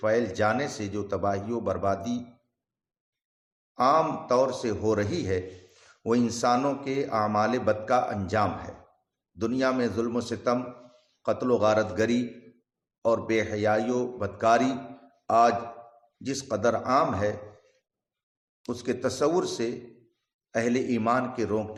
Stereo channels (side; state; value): both; identical; correlation 1.00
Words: جانے سے جو تباہی و بربادی عام طور سے ہو رہی ہے، وہ انسانوں کے اعمال بد کا انجام ہے۔ دنیا میں ظلم و ستم، قتل و غارت گری اور بے حیائی و بدکاری آج جس قدر عام ہے، اس کے تصور سے اہل ایمان کے